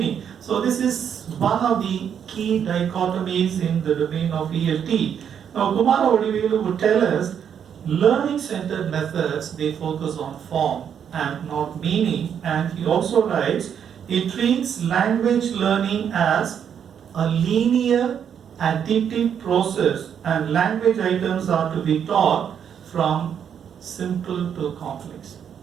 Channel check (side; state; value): left; quieter; 8.3 dB